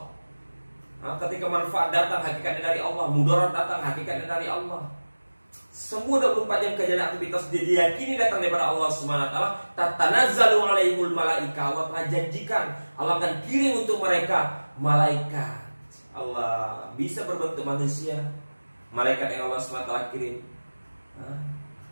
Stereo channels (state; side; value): inverted; both; correlation -1.00